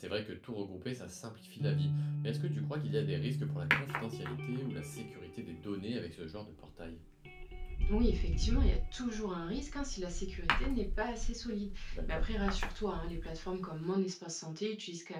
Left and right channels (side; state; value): both; identical; correlation 1.00